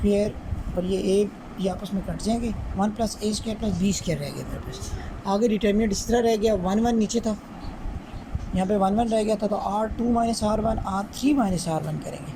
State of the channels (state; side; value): identical; both; correlation 1.00